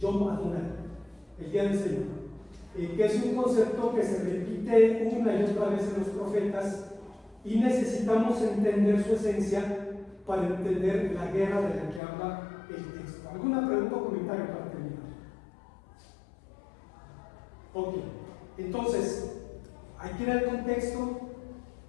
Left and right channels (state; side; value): drops out; right; at 12.0 s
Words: Adonai, el día del Señor, que es un concepto que se repite una y otra vez en los profetas y necesitamos entender su esencia para entender la guerra de la que habla el texto. ¿Alguna pregunta o comentario para terminar? Ok, entonces hay que ir al contexto,